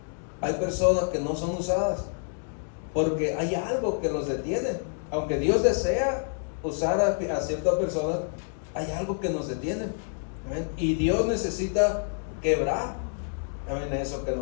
hay personas que no son usadas porque hay algo que los detiene. Aunque Dios desea usar a ciertas personas, hay algo que nos detiene. Y Dios necesita quebrar eso que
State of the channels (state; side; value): silent; right; 58 dB below the other